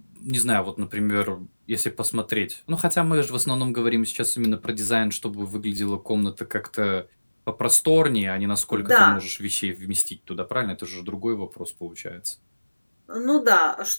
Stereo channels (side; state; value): both; inverted; correlation -1.00